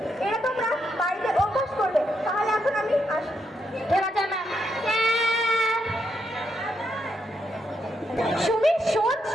এটা তোমরা বাড়িতে অভ্যাস করবে। তাহলে এখন আমি আসি। ঠিক আছে ম্যাম। সুমি, শোন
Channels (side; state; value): both; normal; correlation 0.80